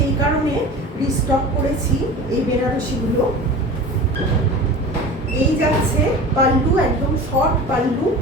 কারণে রিস্টক করেছি এই বেনারসিগুলো। এই যাচ্ছে পাল্লু, একদম শর্ট পাল্লু,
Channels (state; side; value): normal; both; correlation 0.36